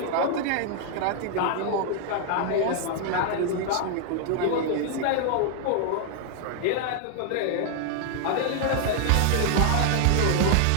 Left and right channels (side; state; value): both; different; correlation 0.00